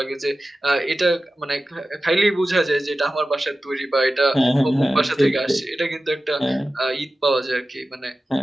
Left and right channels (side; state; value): both; normal; correlation 0.94